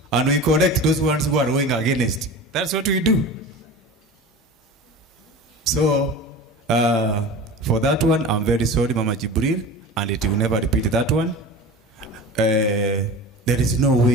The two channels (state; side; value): normal; both; correlation 0.34